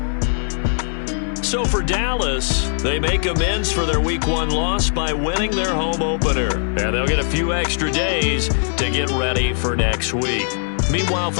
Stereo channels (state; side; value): silent; right; 56 dB below the other